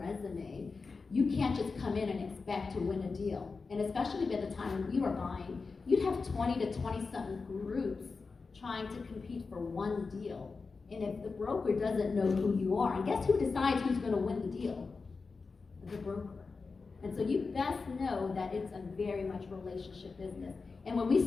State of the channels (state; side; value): quieter; right; 4.4 dB